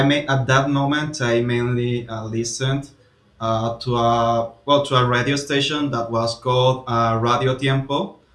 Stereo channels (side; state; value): both; identical; correlation 1.00